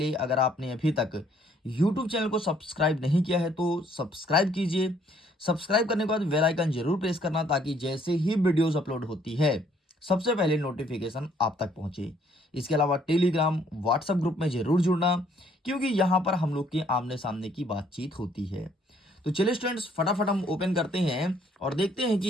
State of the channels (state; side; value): normal; both; correlation 0.64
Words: अगर आपने अभी तक YouTube चैनल को सब्सक्राइब नहीं किया है तो सब्सक्राइब कीजिए। सब्सक्राइब करने के बाद बेल आइकन जरूर प्रेस करना ताकि जैसे ही वीडियोस अपलोड होती है सबसे पहले नोटिफिकेशन आप तक पहुंचे। इसके अलावा टेलीग्राम व्हाट्सएप ग्रुप में जरूर जुड़ना क्योंकि यहाँ पर हम लोग के आमने सामने की बातचीत होती है। तो चलिए स्टूडेंट्स फटाफट हम ओपन करते हैं और देखते हैं